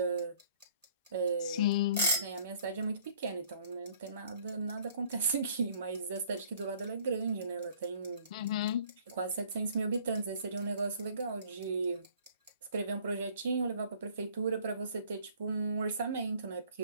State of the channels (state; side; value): inverted; both; correlation -0.56